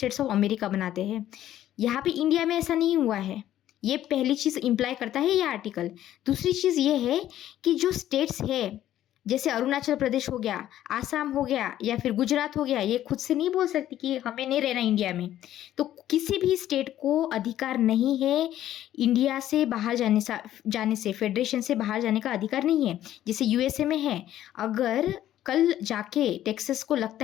ऑफ अमेरिका बनाते हैं। यहाँ पे इंडिया में ऐसा नहीं हुआ है। ये पहली चीज़ इम्प्लाई करता है ये आर्टिकल। दूसरी चीज़ ये है कि जो स्टेट्स है, जैसे अरुणाचल प्रदेश हो गया, आसाम हो गया, या फिर गुजरात हो गया, ये खुद से नहीं बोल सकती कि हमें नहीं रहना इंडिया में। तो किसी भी स्टेट को अधिकार नहीं है इंडिया से बाहर जाने से, फेडरेशन से बाहर जाने का अधिकार नहीं है, जैसे यूएसए में है। अगर कल जाके टेक्सास को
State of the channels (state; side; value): quieter; right; 12.5 dB